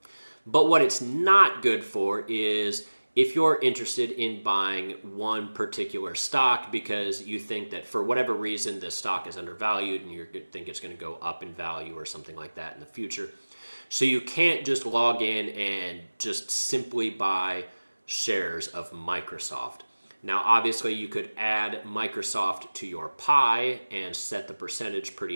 But what it's not good for is if you're interested in buying one particular stock because you think that for whatever reason the stock is undervalued and you think it's going to go up in value or something like that in the future. So you can't just log in and just simply buy shares of Microsoft. Now, obviously, you could add Microsoft to your pie and set the percentage pretty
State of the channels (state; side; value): inverted; both; correlation -1.00